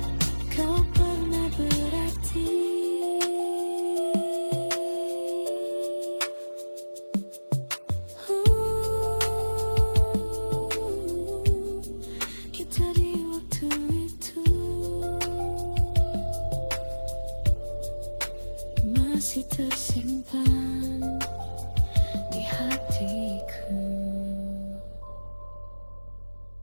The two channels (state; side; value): inverted; both; correlation -1.00